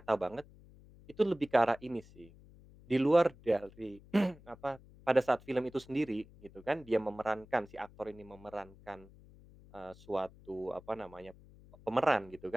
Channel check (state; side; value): noise; left; hum, 22 dB below the sound